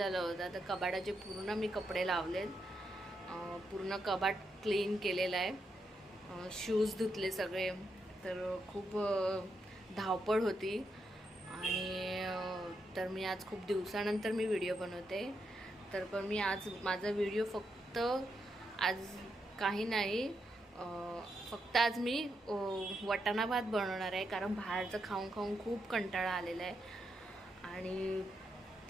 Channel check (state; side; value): normal; both; correlation 0.82